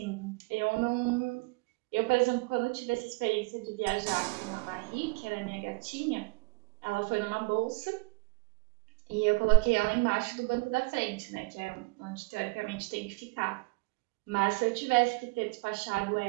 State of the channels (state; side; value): quieter; left; 27.2 dB